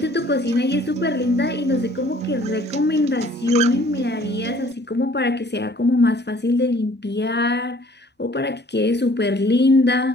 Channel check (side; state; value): both; normal; correlation 0.56